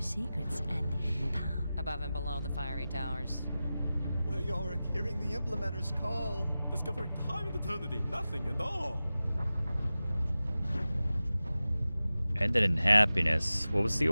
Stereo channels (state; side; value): inverted; both; correlation -0.95